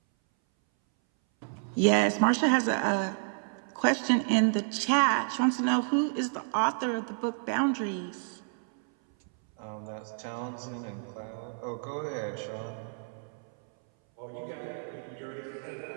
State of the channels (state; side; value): silent; left; 58 dB below the other